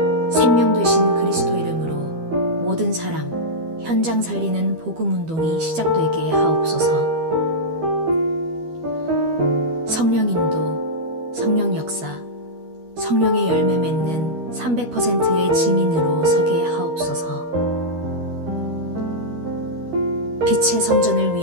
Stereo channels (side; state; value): left; late; 12 ms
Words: 생명 되신 그리스도 이름으로 모든 사람, 현장 살리는 복음 운동이 시작되게 하옵소서. 성령 인도, 성령 역사, 성령의 열매 맺는 300%의 증인으로 서게 하옵소서. 빛의 성전을